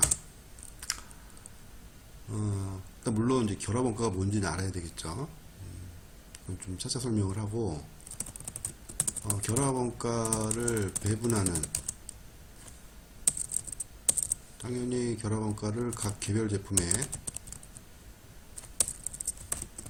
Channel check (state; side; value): identical; both; correlation 1.00